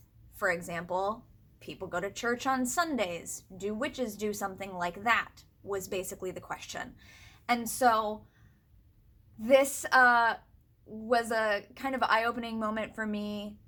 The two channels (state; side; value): identical; both; correlation 1.00